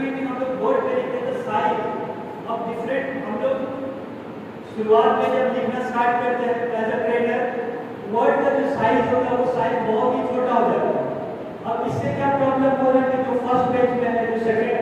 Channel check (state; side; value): identical; both; correlation 1.00